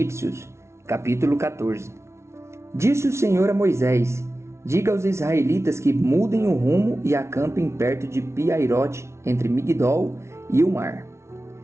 Capítulo 14. Disse o Senhor a Moisés: Diga aos israelitas que mudem o rumo e acampem perto de Pi-Hairote, entre Migdol e o mar.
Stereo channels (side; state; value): left; late; 0.13 ms